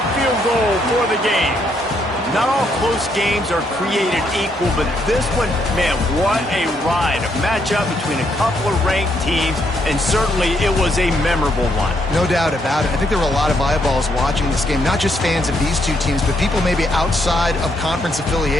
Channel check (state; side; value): normal; both; correlation 0.74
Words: field goal for the game. Not all close games are created equal, but this one, man, what a ride. A matchup between a couple of ranked teams, and certainly it was a memorable one. No doubt about it. I think there were a lot of eyeballs watching this game, not just fans of these two teams, but people maybe outside of conference